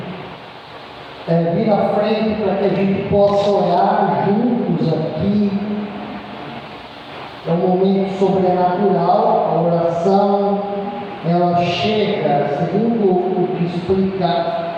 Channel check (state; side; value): identical; both; correlation 1.00